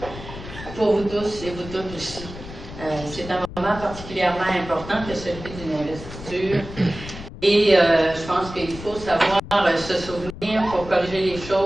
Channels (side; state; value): left; noise; rumble, 13 dB below the sound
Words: Pour vous tous et vous toutes aussi. C'est un moment particulièrement important que celui d'une investiture. Et je pense qu'il faut savoir se souvenir pour corriger les